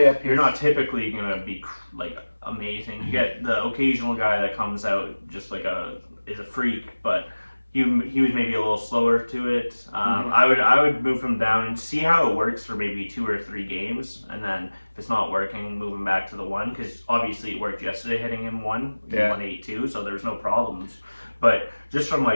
You're not typically gonna be like amazing. You get the occasional guy that comes out just like is a freak, but. He was maybe a little slower to it. I would move him down and see how it works for maybe 2 or 3 games, and then if it's not working, move him back to the 1, because obviously it worked yesterday hitting him 1. He won 8-2, so there's no problems. But just from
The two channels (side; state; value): both; inverted; correlation -1.00